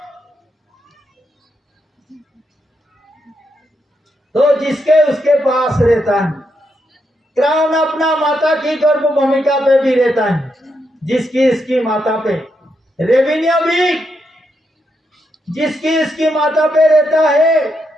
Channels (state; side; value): normal; both; correlation 0.81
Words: तो जिसके उसके पास रहता है, क्राउन अपना माता की गर्भ भूमिका पे भी रहता है, जिसकी इसकी माता पे। रेवेन्यू भी जिसकी इसकी माता पे रहता है,